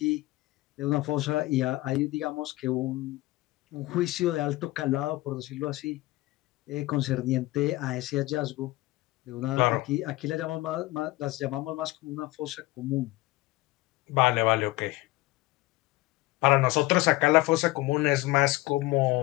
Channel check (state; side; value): quieter; right; 19.5 dB